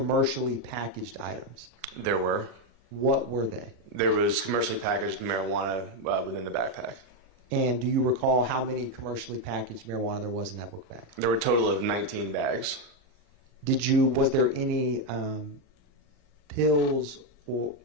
packaged items? There were. What were they? There was commercially packaged marijuana within the backpack. And do you recall how many commercially packaged marijuana there was in that book bag? There were a total of 19 bags. Was there any pills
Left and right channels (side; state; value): left; late; 40 ms